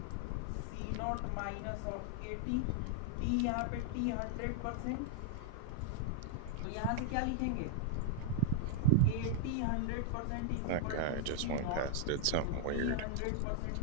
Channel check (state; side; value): different; both; correlation 0.00